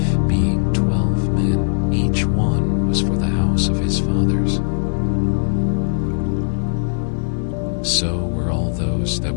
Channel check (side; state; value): right; silent; digital silence